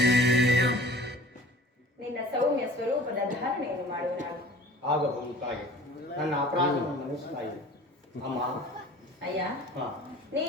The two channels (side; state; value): both; normal; correlation 0.44